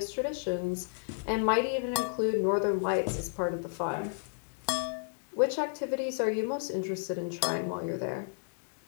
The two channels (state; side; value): silent; right; digital silence